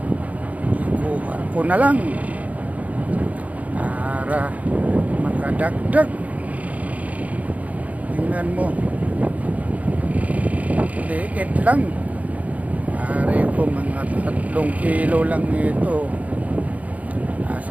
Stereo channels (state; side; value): late; left; 0.071 ms